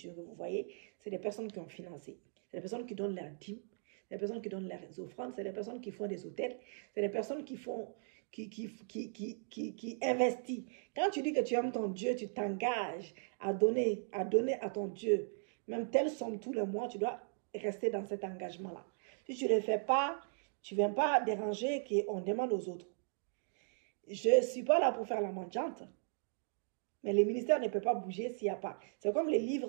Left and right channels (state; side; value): silent; left; digital silence